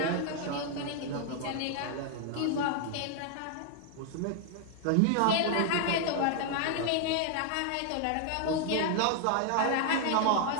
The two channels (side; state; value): both; different; correlation 0.00